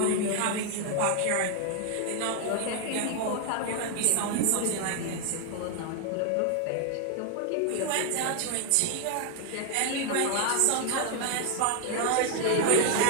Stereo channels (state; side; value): different; both; correlation 0.00